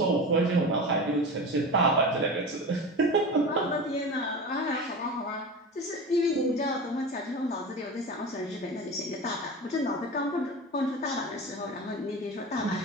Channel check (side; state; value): both; normal; correlation 0.29